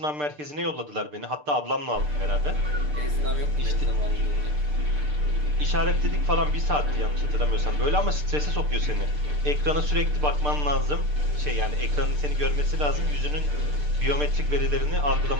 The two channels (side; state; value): left; late; 6.7 ms